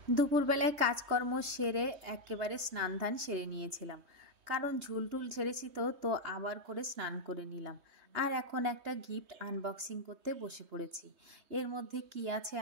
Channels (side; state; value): left; late; 3.2 ms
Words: দুপুরবেলায় কাজকর্ম সেরে একেবারে স্নান ধান সেরে নিয়েছিলাম, কারণ ঝুলটুল ঝেড়েছি, তো আবার করে স্নান করে নিলাম। আর এখন একটা গিফট আনবক্সিং করতে বসে পড়েছি। এর মধ্যে কি আছে